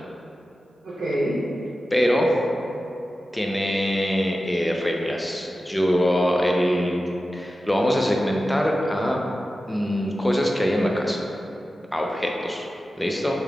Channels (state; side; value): normal; both; correlation 0.93